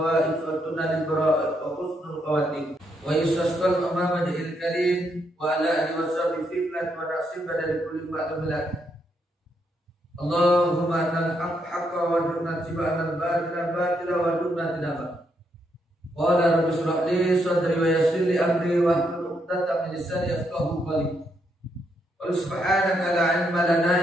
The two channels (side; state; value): both; normal; correlation 0.77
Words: wa tunal bara'at wa husnul khawatim wa yusasqal Muhammadil karim wa ala alihi wa sahbihi fitnat wa nasib dari kulli ma'lumat. Allahumma anal haqqa wa dunna tiba'an al-batila batila wa dunna tinaba. Qala rabbi shrah li sadri wa yassir li amri wa tatap lisan yafqahu qawli. Wa subhanaka la ilma lana